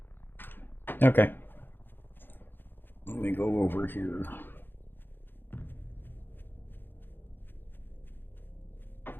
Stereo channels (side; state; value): right; late; 0.098 ms